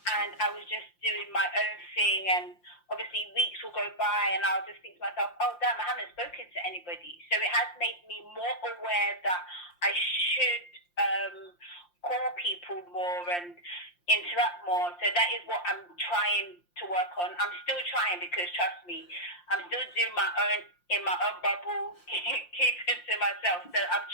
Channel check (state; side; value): late; right; 5.7 ms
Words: I was just doing my own thing, and obviously weeks will go by and I'll just think to myself, oh damn, I haven't spoken to anybody. So it has made me more aware that I should call people more and interact more. So that is what I'm trying to work on. I'm still trying, because trust me, I'm still doing my own in my own bubble, keeping to myself. So I'm